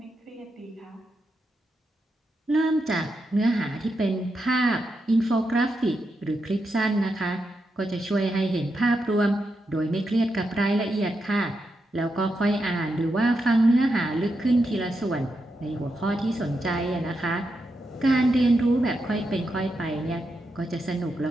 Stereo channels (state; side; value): normal; both; correlation 0.85